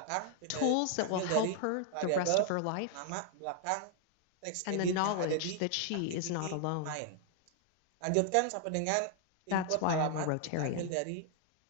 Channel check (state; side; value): different; both; correlation 0.00